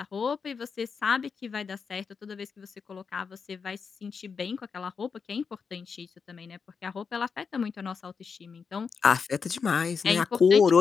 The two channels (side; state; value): right; quieter; 5.7 dB